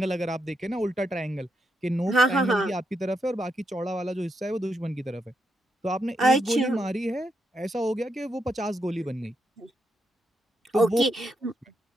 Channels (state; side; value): normal; both; correlation 0.82